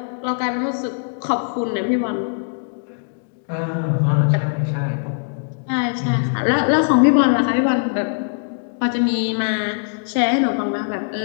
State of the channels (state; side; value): silent; right; digital silence